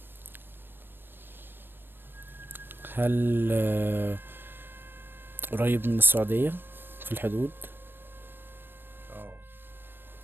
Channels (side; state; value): left; late; 0.097 ms